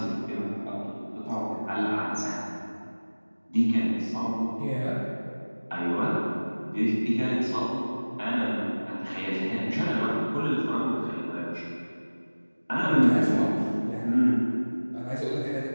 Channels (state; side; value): inverted; both; correlation -1.00